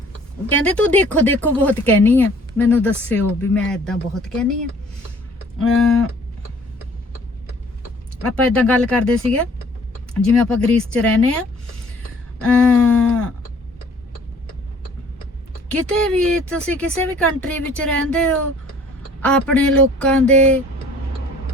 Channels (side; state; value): both; normal; correlation 0.54